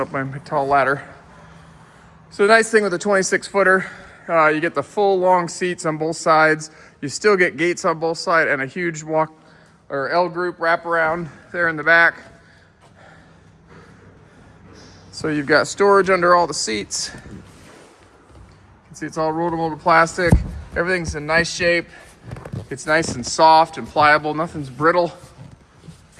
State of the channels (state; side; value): identical; both; correlation 1.00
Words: up my tall ladder. So the nice thing with the 26-footer, you get the full long seats on both sides. You still get gates on both sides and a huge L group wraparound there in the back. So you've got storage under all the seats. You can see it's all rollable plastic. Everything's in nice shape. It's nice and soft and pliable. Nothing's brittle.